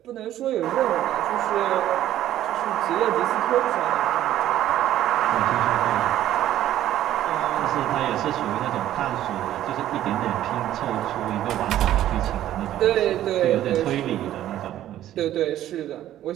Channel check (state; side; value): quieter; left; 12.7 dB